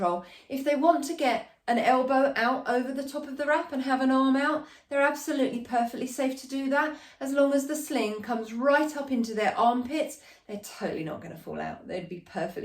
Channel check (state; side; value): identical; both; correlation 1.00